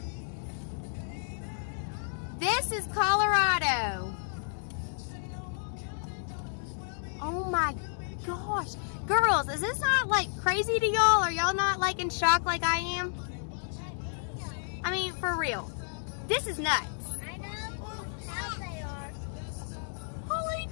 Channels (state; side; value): silent; right; digital silence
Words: This is Colorado. Oh my gosh. Girls, is this not like crazy to y'all? Are y'all not like in shock like I am? I mean, for real. This is nuts. I know how they are. Holy